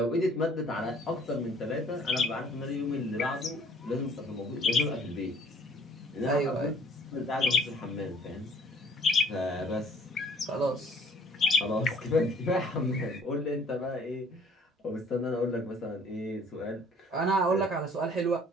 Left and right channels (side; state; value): both; normal; correlation 0.56